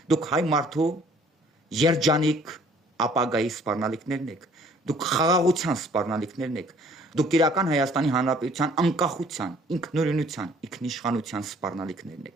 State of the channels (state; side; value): normal; both; correlation 0.57